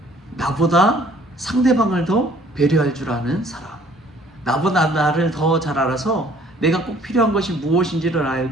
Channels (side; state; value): both; normal; correlation 0.57